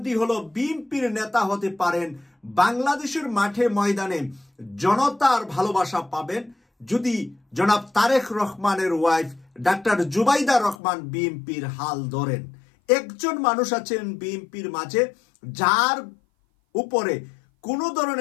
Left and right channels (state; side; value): drops out; right; at 10.8 s